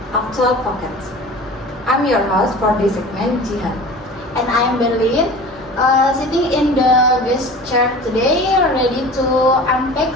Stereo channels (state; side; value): normal; both; correlation 0.39